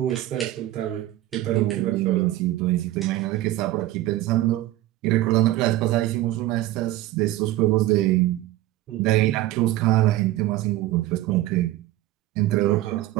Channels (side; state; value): left; quieter; 15.7 dB